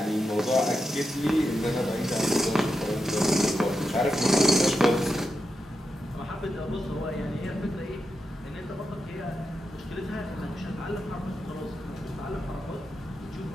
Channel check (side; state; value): both; normal; correlation 0.87